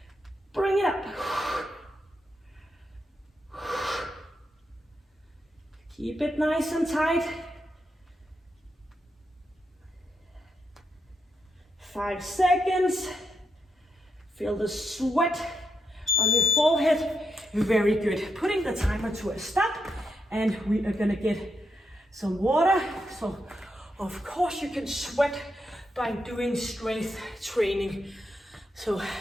Bring it up. Keep it nice and tight. 5 seconds. Feel the sweat on your forehead. Very good. Putting the timer to a stop, and we are gonna get some water. So of course you can sweat by doing strength training. So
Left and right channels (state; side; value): normal; both; correlation 0.83